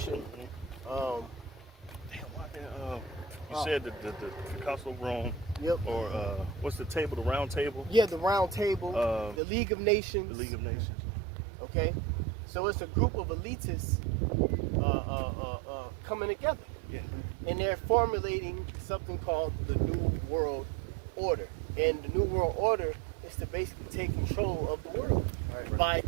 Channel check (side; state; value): left; drops out; at 9.4 s